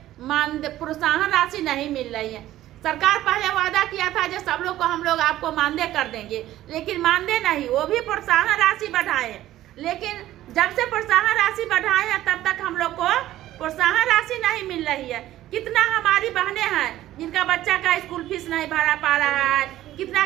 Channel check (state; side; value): quieter; left; 14.2 dB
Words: प्रोत्साहन राशि नहीं मिल रही है। सरकार पहले वादा किया था जो सब लोग को हम लोग आपको मानदेय कर देंगे, लेकिन मानदेय नहीं, वो भी प्रोत्साहन राशि बढ़ाए। लेकिन जब से प्रोत्साहन राशि बढ़ाए हैं तब तक हम लोग को प्रोत्साहन राशि नहीं मिल रही है। कितना हमारी बहनें हैं जिनका बच्चा का स्कूल फीस नहीं भरा पा रहा है, कितना